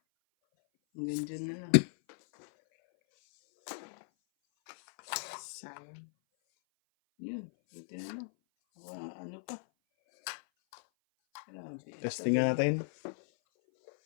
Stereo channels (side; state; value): right; silent; 54 dB below the other